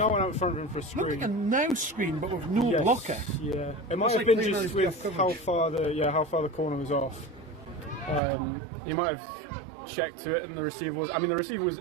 one out front of him for a Looked like screen. a now screen, but with no blocker. Yeah, it might Looks have like been clean just out his with coverage. how far the corner was off. He might have checked to it, and the receiver was. I mean, the receiver was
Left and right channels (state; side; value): drops out; left; at 8.2 s